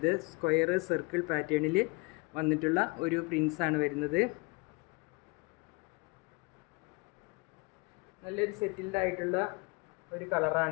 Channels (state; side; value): quieter; right; 26.7 dB